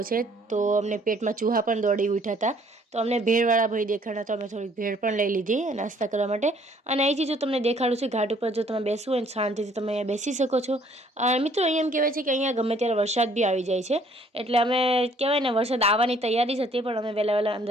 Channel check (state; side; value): normal; both; correlation 0.61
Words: છે। તો અમને પેટમાં ચૂહા પણ દોડી ઉઠ્યા હતા, તો અમને ભેળવાળા ભાઈ દેખાડા, તો અમે થોડીક ભેળ પણ લઈ લીધી નાસ્તા કરવા માટે। અને અહીંથી જો તમને દેખાડું છું ઘાટ ઉપર, જો તમે બેસવું હોય ને શાંતિથી તમે અહીંયા બેસી શકો છો। મિત્રો, અહીંયા એમ કહેવાય છે કે અહીંયા ગમે ત્યારે વરસાદ બી આવી જાય છે, એટલે અમે કહેવાય ને વરસાદ આવવાની તૈયારી જ હતી, પણ અમે વહેલા